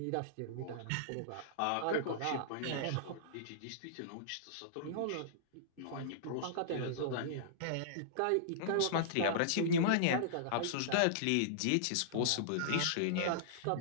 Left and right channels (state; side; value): different; both; correlation -0.02